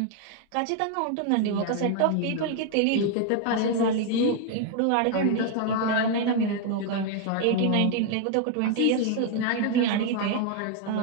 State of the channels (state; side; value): different; both; correlation 0.00